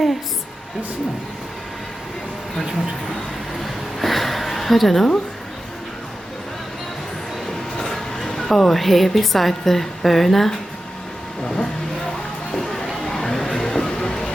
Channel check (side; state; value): both; normal; correlation 0.92